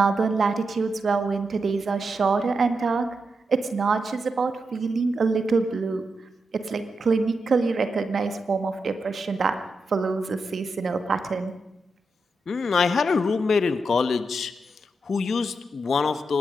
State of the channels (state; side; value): normal; both; correlation 0.86